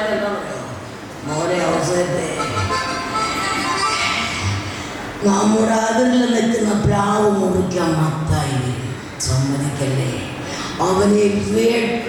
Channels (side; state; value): both; identical; correlation 1.00